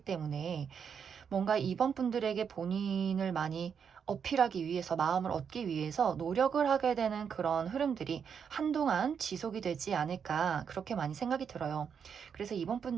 뭔가 이번 분들에게 본인을 많이 어필하기 위해서, 마음을 얻기 위해서 노력을 하게 되는 그런 흐름들이 한동안 지속이 되지 않을까 그렇게 많이 생각이 들어요. 그래서 이번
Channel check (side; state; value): left; quieter; 7.1 dB